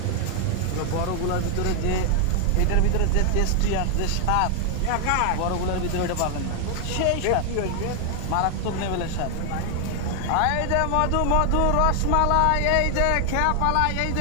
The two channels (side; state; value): both; different; correlation 0.00